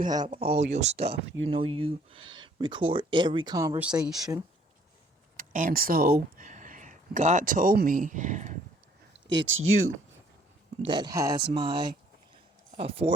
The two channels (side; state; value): both; normal; correlation 0.61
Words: have all your stuff. You know you record every conversation. And so God told me it's you that has my